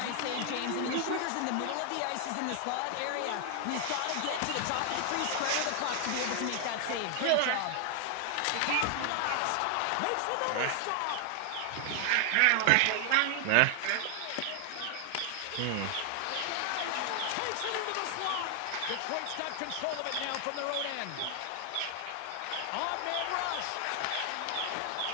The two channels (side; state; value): both; different; correlation 0.00